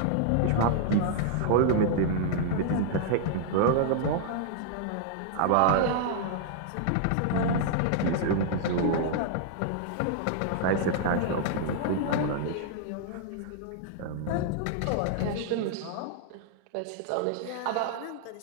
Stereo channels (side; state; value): both; different; correlation -0.01